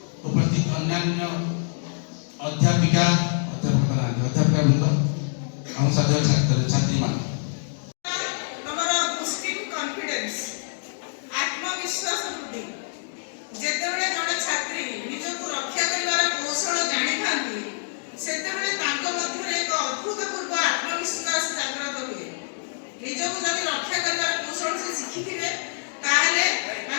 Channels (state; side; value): silent; right; digital silence